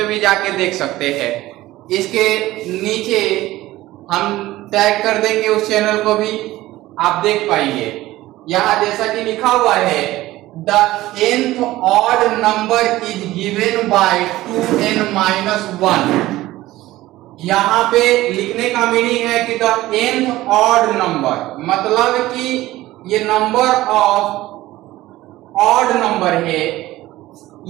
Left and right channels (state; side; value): quieter; left; 16.8 dB